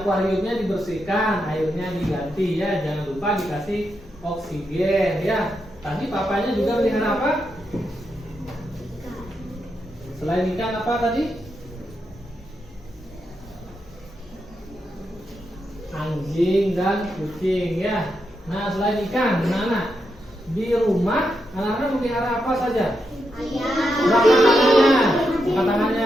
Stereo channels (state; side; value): normal; both; correlation 0.84